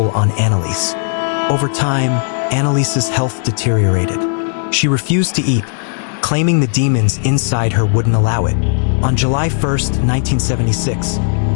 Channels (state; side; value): silent; right; 70 dB below the other